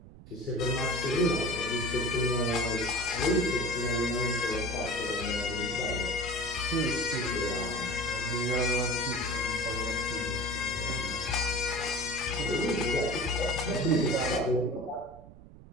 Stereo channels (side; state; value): right; noise; rumble, 18 dB below the sound